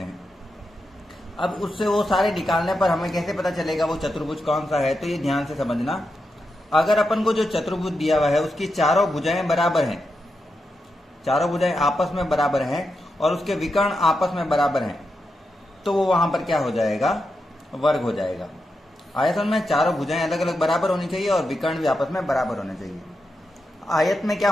हैं। अब उससे वो सारे निकालने पर हमें कैसे पता चलेगा वो चतुर्भुज कौन सा है, तो ये ध्यान से समझना। अगर अपन को जो चतुर्भुज दिया हुआ है उसकी चारों भुजाएं बराबर हैं, चारों भुजाएं आपस में बराबर हैं और उसके विकर्ण आपस में बराबर हैं, तो वो वहां पर क्या हो जाएगा? वर्ग हो जाएगा। आयतन में चारों भुजाएं अलग अलग बराबर होनी चाहिए और विकर्ण भी आपस में बराबर होने चाहिए। आयत में क्या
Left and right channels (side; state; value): both; normal; correlation 0.87